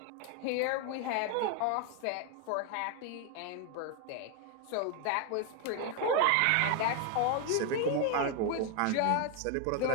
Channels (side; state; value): both; different; correlation 0.01